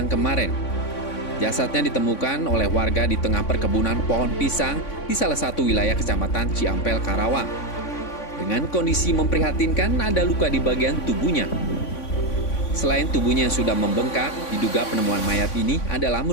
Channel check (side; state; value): right; late; 3.5 ms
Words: kemarin. Jasadnya ditemukan oleh warga di tengah perkebunan pohon pisang di salah satu wilayah Kecamatan Ciampel, Karawang. Dengan kondisi memprihatinkan, ada luka di bagian tubuhnya. Selain tubuhnya yang sudah membengkak, diduga penemuan mayat ini adalah